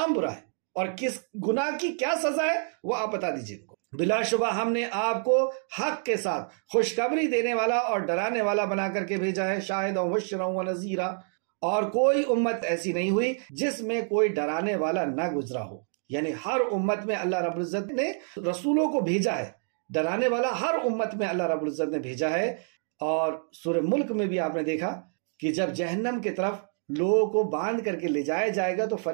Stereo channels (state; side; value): silent; left; 60 dB below the other